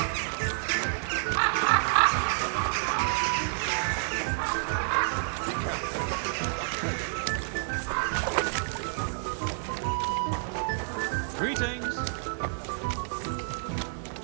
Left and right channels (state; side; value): silent; left; 58 dB below the other